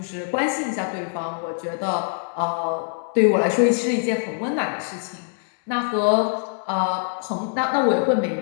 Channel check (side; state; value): right; silent; digital silence